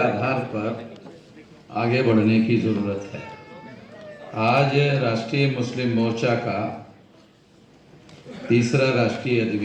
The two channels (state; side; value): identical; both; correlation 1.00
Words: पर आगे बढ़ने की जरूरत है। आज राष्ट्रीय मुस्लिम मोर्चा का तीसरा राष्ट्रीय